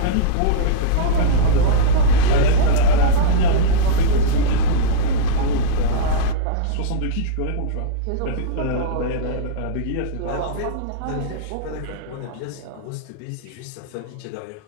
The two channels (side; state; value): both; different; correlation -0.02